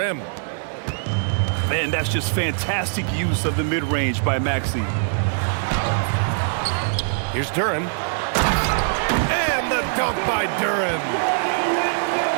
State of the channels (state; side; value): silent; left; digital silence